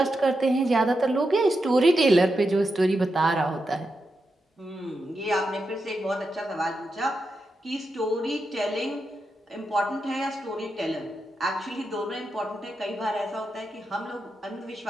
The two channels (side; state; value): both; normal; correlation 0.87